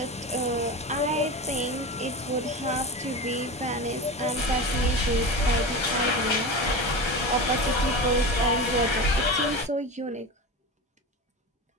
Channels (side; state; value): both; normal; correlation 0.25